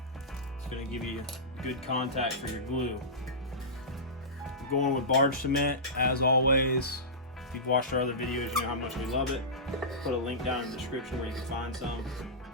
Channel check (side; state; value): both; normal; correlation -0.17